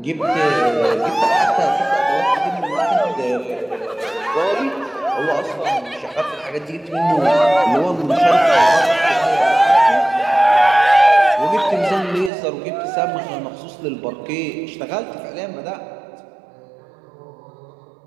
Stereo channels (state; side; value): drops out; left; at 12.3 s